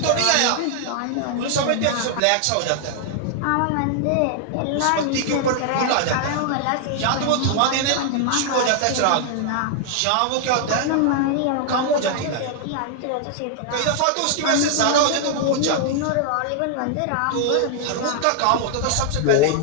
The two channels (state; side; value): different; both; correlation 0.00